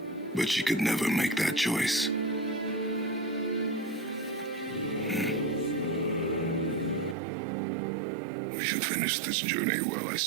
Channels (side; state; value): left; drops out; at 7.2 s